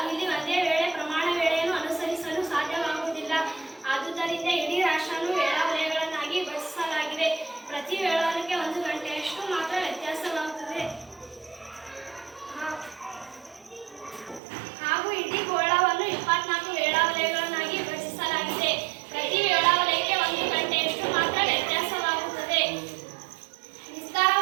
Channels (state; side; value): drops out; left; at 14.4 s